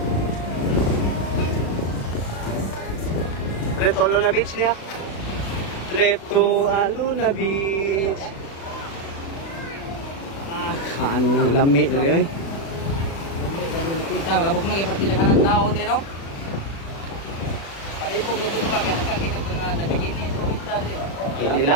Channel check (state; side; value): late; right; 36 ms